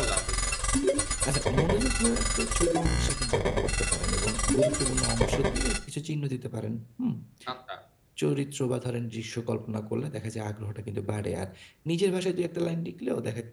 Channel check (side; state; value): both; identical; correlation 1.00